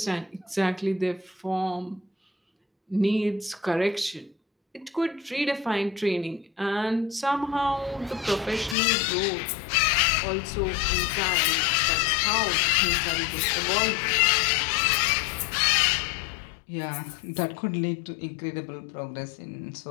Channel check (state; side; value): drops out; right; at 8.8 s